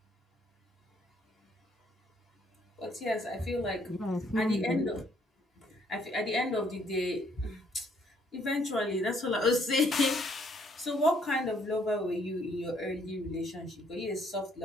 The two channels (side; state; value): both; normal; correlation 0.67